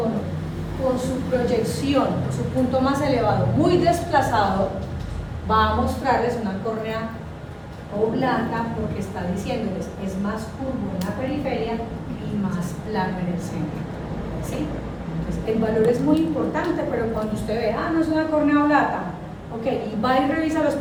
por su proyección, por su punto más elevado, muy desplazado, va a mostrarles una córnea oblata, porque está diciéndoles es más curvo en la periferia y más plano en el centro. ¿Sí? Entonces, el valor es muy importante, pero cuando usted ve, no es una córnea blata, ok, y va y revisa los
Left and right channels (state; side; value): identical; both; correlation 1.00